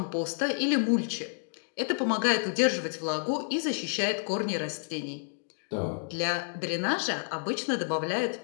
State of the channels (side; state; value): right; silent; digital silence